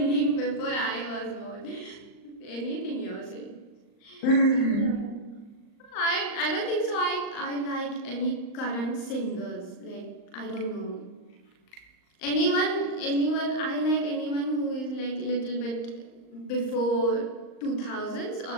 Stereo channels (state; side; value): late; right; 38 ms